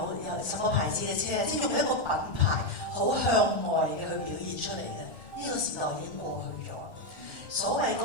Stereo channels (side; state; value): left; late; 1.4 ms